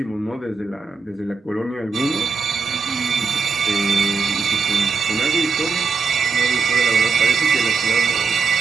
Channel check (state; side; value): quieter; left; 4.9 dB